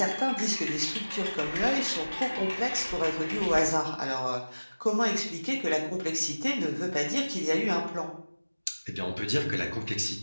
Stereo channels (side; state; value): both; inverted; correlation -1.00